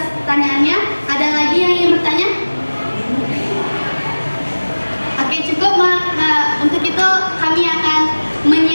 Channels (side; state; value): both; inverted; correlation -1.00